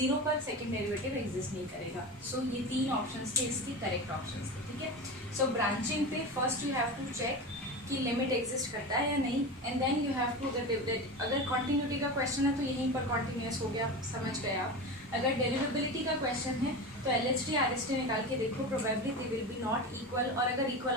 पर सेकंड डेरिवेटिव एग्जिस्ट नहीं करेगा. सो ये तीन ऑप्शंस थे, इसके करेक्ट ऑप्शंस थे. ठीक है. सो ब्रांचिंग पे first you have to check कि लिमिट एग्जिस्ट करता है या नहीं, and then you have to अगर कॉन्टिन्यूटी का क्वेश्चन है तो यहीं पर कॉन्टिन्यूस हो गया, समझ गए आप. अगर डेरिवेबिलिटी का क्वेश्चन है तो LHT RHT निकाल के देखो, probably they will be not equal, और अगर इक्वल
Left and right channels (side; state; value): both; normal; correlation 0.26